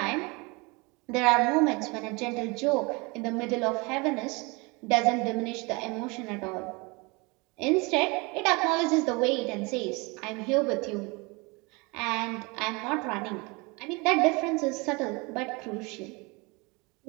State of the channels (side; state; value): left; quieter; 27.4 dB